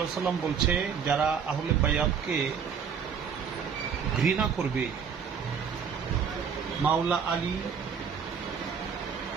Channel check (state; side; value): quieter; left; 6.9 dB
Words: ওয়াসাল্লাম বলছে, যারা আহলে বায়াতকে ঘৃণা করবে, মাওলা আলী,